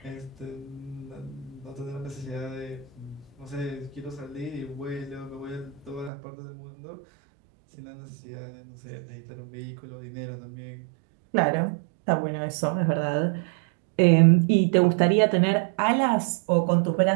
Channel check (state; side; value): drops out; left; at 6.1 s